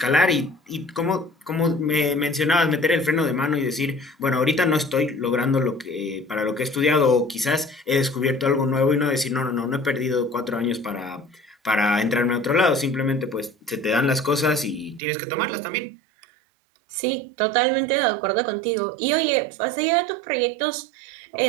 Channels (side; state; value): left; drops out; at 15.0 s